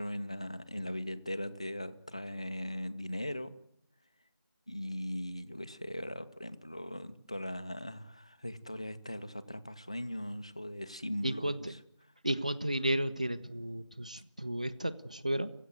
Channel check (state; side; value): inverted; both; correlation -0.89